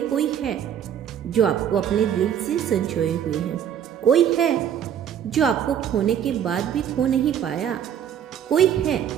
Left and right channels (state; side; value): quieter; left; 9.4 dB